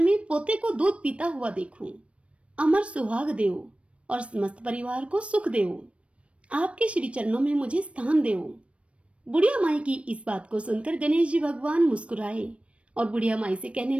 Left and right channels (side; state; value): left; late; 0.061 ms